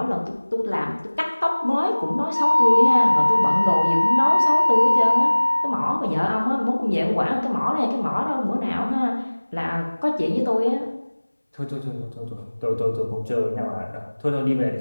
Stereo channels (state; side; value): inverted; both; correlation -1.00